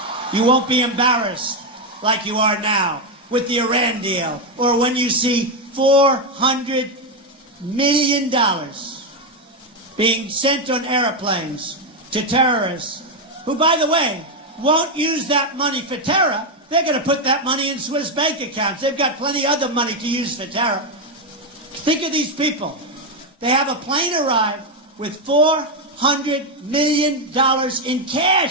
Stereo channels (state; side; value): normal; both; correlation 0.06